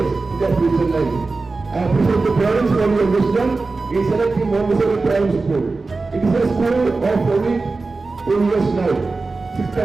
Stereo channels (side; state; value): left; quieter; 3.8 dB